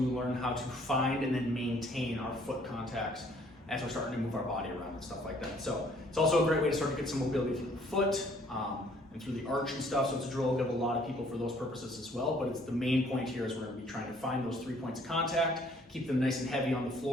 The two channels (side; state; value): both; normal; correlation 0.61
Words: how to find and then maintain our foot contacts as we're starting to move our body around and stuff like that. So it's also a great way to start to get some mobility through the foot and through the arch and stuff. So it's a drill we'll give a lot of people for those purposes as well. But it's the main point here is we're going to be trying to find those 3 points of contact, keep them nice and heavy on the